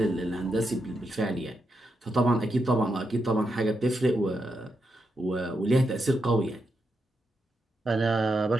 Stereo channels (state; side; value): normal; both; correlation 0.84